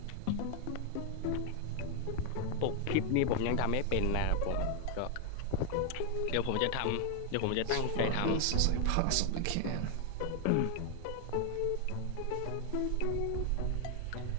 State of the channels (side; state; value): both; different; correlation 0.00